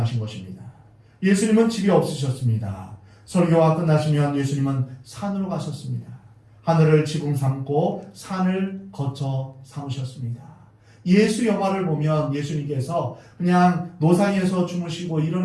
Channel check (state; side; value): identical; both; correlation 1.00